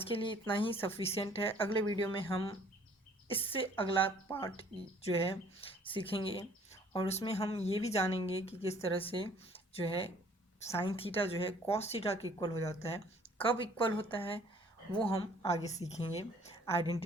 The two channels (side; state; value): both; normal; correlation 0.57